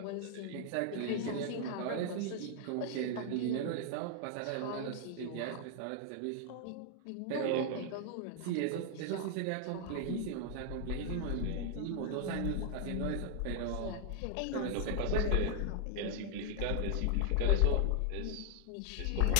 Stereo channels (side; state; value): both; different; correlation 0.00